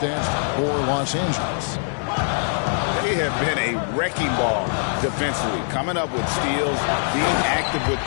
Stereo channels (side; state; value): right; silent; digital silence